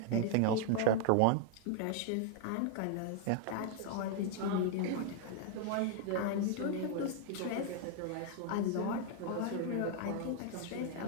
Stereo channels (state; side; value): different; both; correlation 0.00